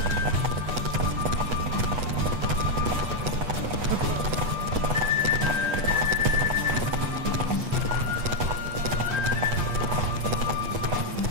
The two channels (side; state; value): left; late; 8.2 ms